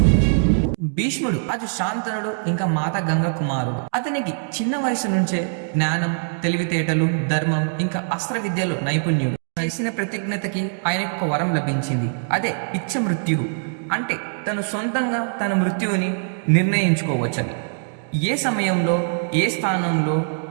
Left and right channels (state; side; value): silent; left; digital silence